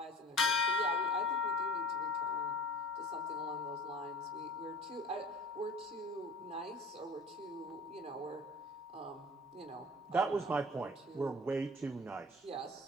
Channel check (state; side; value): normal; both; correlation 0.42